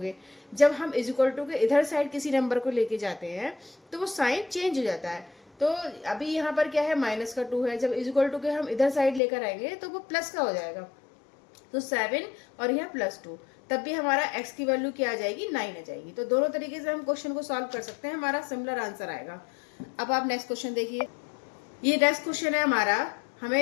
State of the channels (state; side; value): drops out; right; at 9.2 s